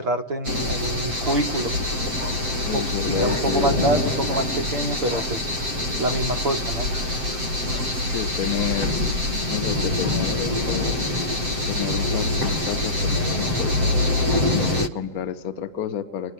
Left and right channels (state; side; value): late; left; 7.7 ms